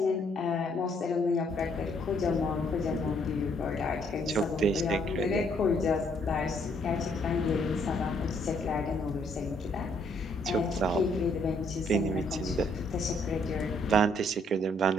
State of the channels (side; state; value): both; normal; correlation 0.68